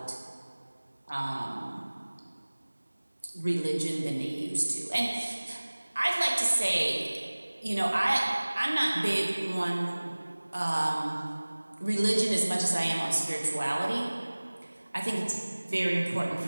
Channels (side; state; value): both; inverted; correlation -1.00